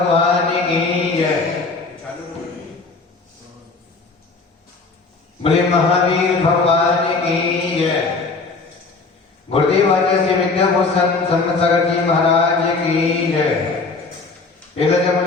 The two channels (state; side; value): quieter; right; 4.0 dB